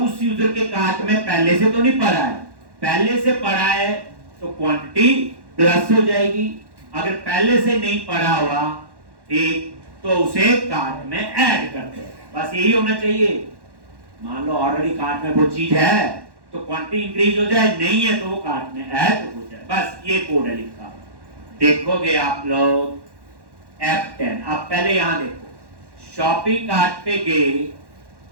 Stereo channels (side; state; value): left; late; 1.1 ms